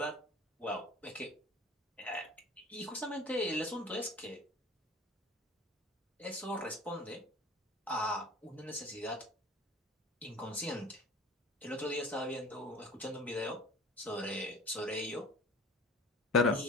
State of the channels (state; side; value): normal; both; correlation 0.41